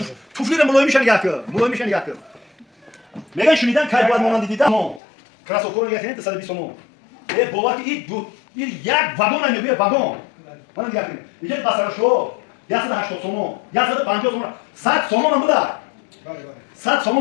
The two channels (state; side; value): drops out; right; at 5.0 s